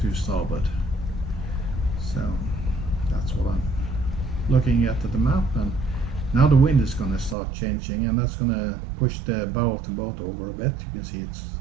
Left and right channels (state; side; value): drops out; left; at 7.4 s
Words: to starboard. So that's what I'm looking at the map, and now the wind is going to start changing, and that's going to push the bow of the boat over a bit. You can see it's